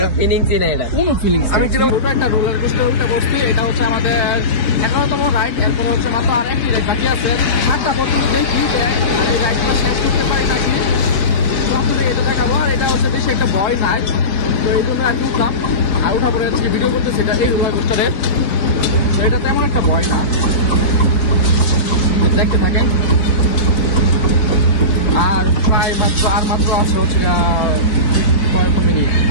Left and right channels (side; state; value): right; late; 4.2 ms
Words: ফিলিংসই না এটা কোনো ফিলিংস আমি যেটা ছোট একটা রোলার কোস্টার উল্টা বসছি এটা হচ্ছে আমাদের 11তম রাইড এরপর হচ্ছে মাত্র আরেকটি রাইড বাকি আছে 7টা পর্যন্ত দেখি এই রাইডটা শেষ করতে পারি নাকি তো আপনাদের এটা দেখাবো আর এটা হচ্ছে বেশি একটা ভয় নাই তো এই জন্য আর কি উঠলাম আর উঠা পরে আজকে ভিডিও করতে সেটা এই রোলার কোস্টারে তো এটা তেমন একটা ভয় না দেখতে থাকেন আর প্রায় মাত্র আছে হচ্ছে কয়েক মিনিট